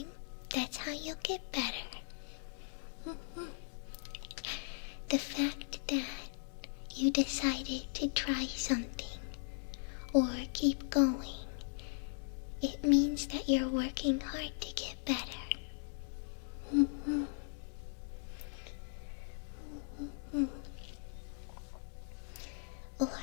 that's how you'll get better. The fact that you decided to try something or keep going, it means that you're working hard to get better. Or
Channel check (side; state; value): right; silent; digital silence